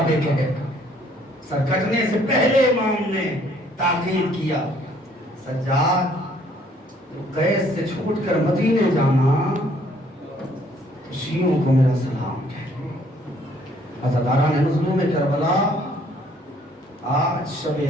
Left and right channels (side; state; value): both; normal; correlation 0.62